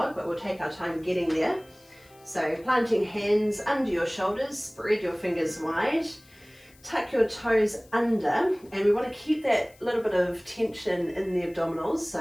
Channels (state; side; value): noise; left; hiss, 28 dB below the sound